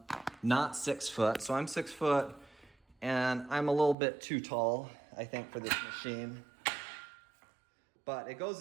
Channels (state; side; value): drops out; left; at 4.0 s